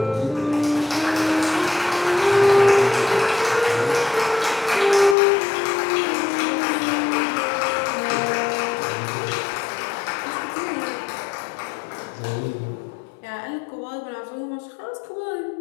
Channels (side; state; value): right; drops out; at 5.2 s